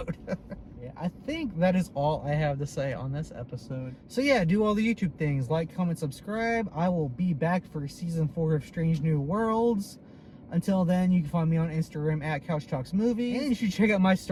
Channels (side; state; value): both; identical; correlation 1.00